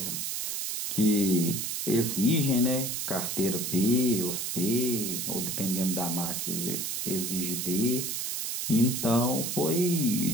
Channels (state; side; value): noise; right; hiss, 2 dB below the sound